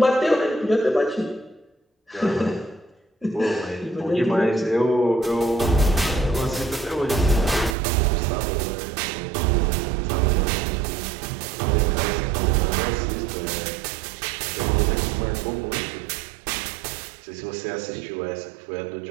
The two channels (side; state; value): left; drops out; at 7.8 s